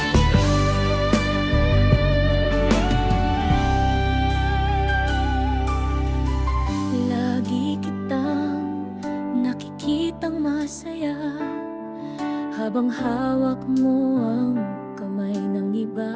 Lagi kitang nakikitang masaya habang hawak mo ang kamay ng iba.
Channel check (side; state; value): both; identical; correlation 1.00